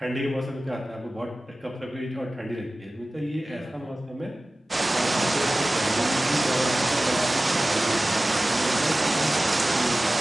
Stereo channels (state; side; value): normal; both; correlation 0.96